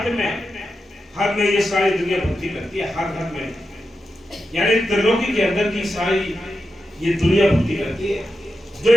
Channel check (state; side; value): normal; both; correlation 0.89